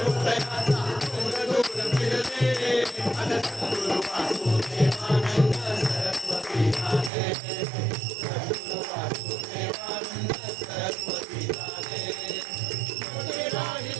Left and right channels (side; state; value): left; drops out; at 7.1 s